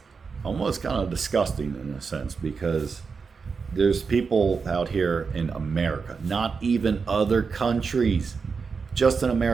almost kind of disgusting in a sense, because there's people out here in America, not even other countries, just in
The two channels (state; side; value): quieter; left; 5.2 dB